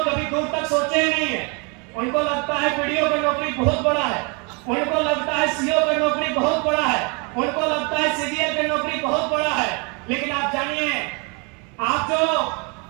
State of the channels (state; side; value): quieter; left; 32.0 dB